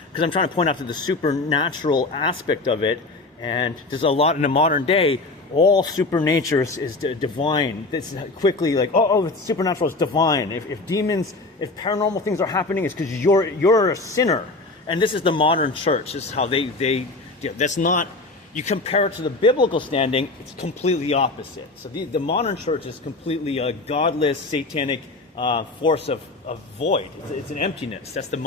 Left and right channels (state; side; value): quieter; right; 3.3 dB